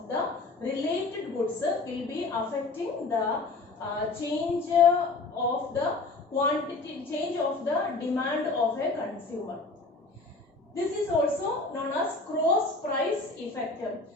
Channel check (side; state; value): right; quieter; 3.5 dB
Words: the related goods will be affecting the change of the quantity, change of the demand of a consumer. This is also known as cross price effect.